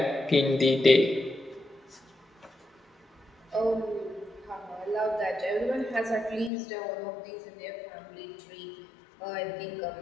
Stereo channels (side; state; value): right; drops out; at 6.5 s